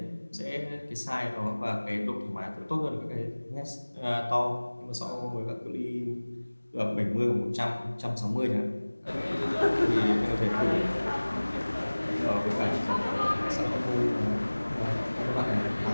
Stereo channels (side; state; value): both; inverted; correlation -1.00